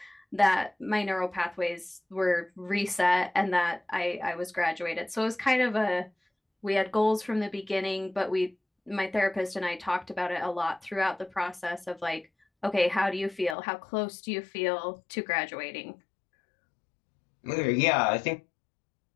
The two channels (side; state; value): right; drops out; at 13.6 s